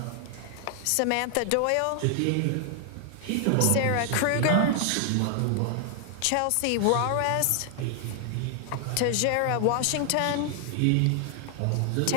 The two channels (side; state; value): both; different; correlation 0.00